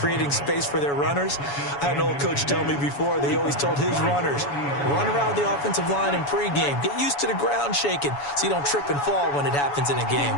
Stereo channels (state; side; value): late; right; 7.1 ms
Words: space for their runners. I had an old coach tell me before, they always told his runners, run around the offensive line in pregame. Get used to the ground shaking so you don't trip and fall when it happens in a